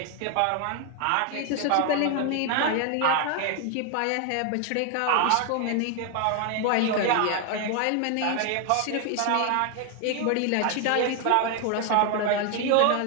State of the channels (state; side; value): different; both; correlation 0.01